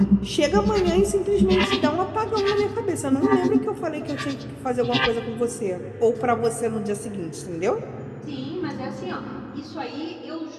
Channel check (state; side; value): identical; both; correlation 1.00